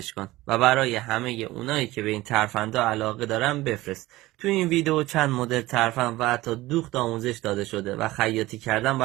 کن و برای همه اونایی که به این ترفندها علاقه دارن بفرست. تو این ویدیو چند مدل ترفند و حتی دوخت آموزش داده شده و خیاطی کردن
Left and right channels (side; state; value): left; quieter; 18.3 dB